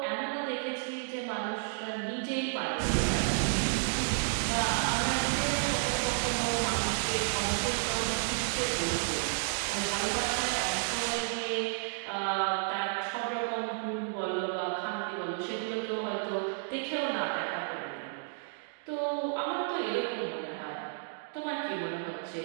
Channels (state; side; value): silent; left; digital silence